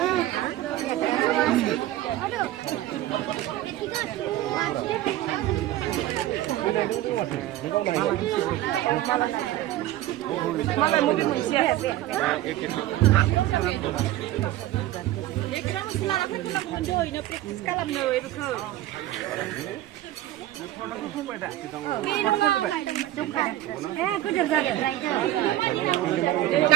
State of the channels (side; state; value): left; quieter; 14.6 dB